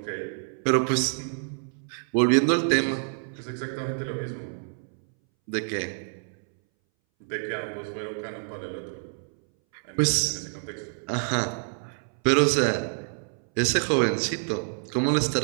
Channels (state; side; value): silent; left; 60 dB below the other